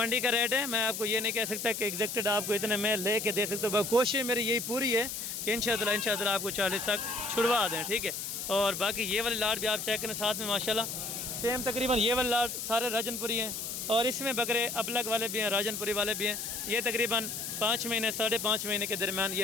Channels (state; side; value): noise; left; hiss, 5 dB below the sound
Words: का रेट है, मैं आपको ये नहीं कह सकता कि एग्जैक्टेड आपको इतने में ले के दे सकता हूँ। कोशिश मेरी यही पूरी है कि इंशाअल्लाह आपको 40 तक छुड़वा दें, ठीक है। और बाकी ये वाली लाट भी आप चेक करें साथ में माशाल्लाह सेम तकरीबन ये वाली लाट सारे राजनपुरी हैं और इसमें बकरे अबलग वाले भी हैं, राजनपुरी वाले भी हैं। ये तकरीबन 5 महीने 5.5 महीने के दरमियान ये